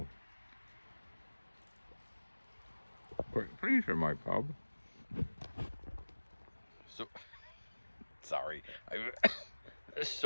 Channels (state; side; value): inverted; both; correlation -1.00